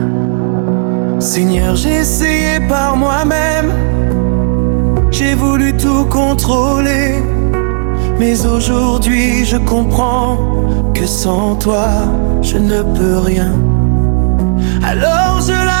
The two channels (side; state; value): left; silent; digital silence